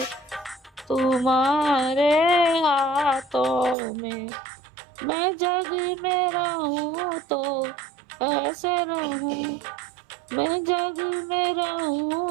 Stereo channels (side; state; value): left; drops out; at 3.8 s